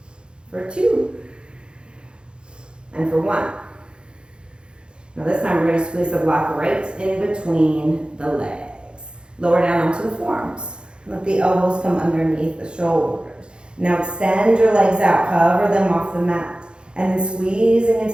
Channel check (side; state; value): left; late; 0.052 ms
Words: For 2. And for 1. Now this time we're going to squeeze the block right in between the legs. Lower down onto the forearms. Let the elbows come underneath the shoulders. Now extend your legs out, hover them off the mat. And then squeezing